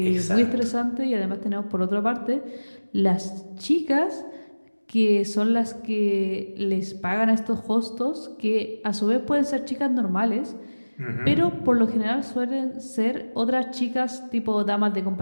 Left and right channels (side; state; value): both; inverted; correlation -1.00